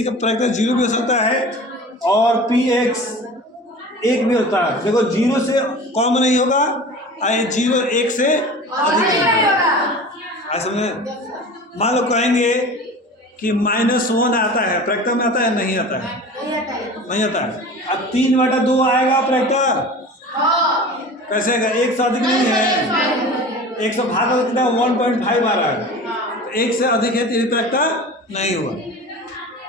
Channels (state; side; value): normal; both; correlation 0.37